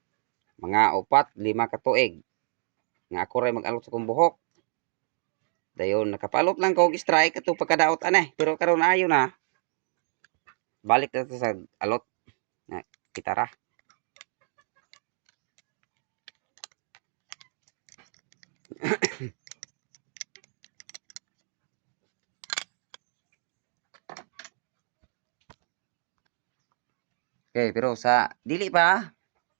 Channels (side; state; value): left; silent; 58 dB below the other